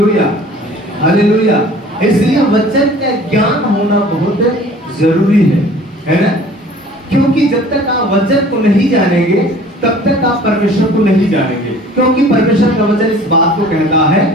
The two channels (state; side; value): normal; both; correlation 0.49